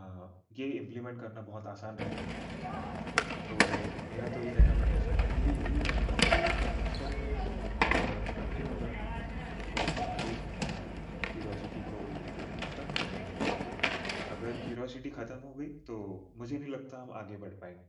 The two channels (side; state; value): both; identical; correlation 1.00